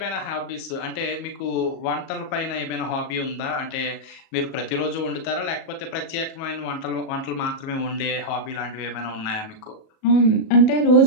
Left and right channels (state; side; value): late; right; 37 ms